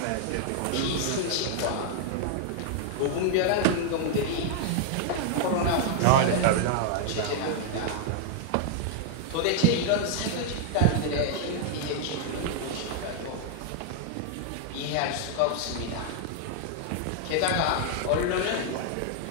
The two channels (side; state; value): both; different; correlation 0.00